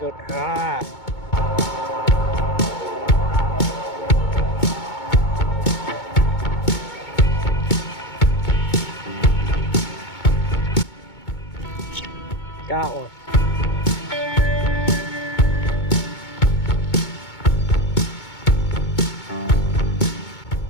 Ah! Got one.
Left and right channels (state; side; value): late; right; 2.2 ms